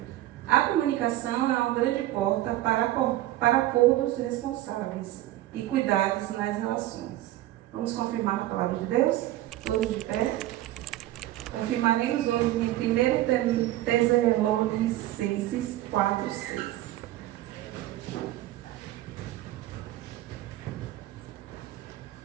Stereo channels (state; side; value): quieter; left; 15.3 dB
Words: A comunicação é uma grande porta para acordos responsáveis e cuidados nas relações. Vamos confirmar a palavra de Deus? Todos de pé. Confirmaremos hoje em 1 Tessalonicenses 4:6.